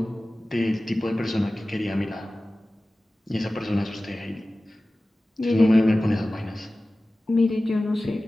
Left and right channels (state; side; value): normal; both; correlation 0.97